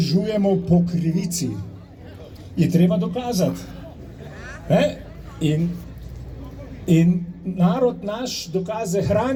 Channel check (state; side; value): identical; both; correlation 1.00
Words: po krivici. Je treba dokazati. In narod naš dokaze